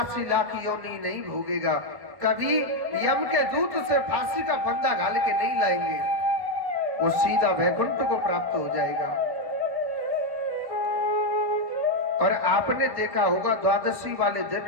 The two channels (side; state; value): left; late; 1.5 ms